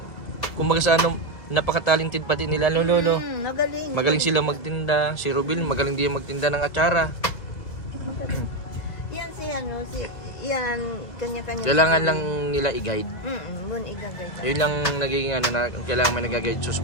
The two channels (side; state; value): right; late; 2.0 ms